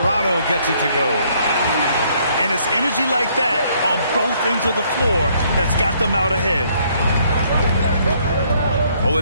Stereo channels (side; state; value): both; inverted; correlation -0.66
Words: gets it to go. And it's energy like that on both ends of the floor that's got them out ahead.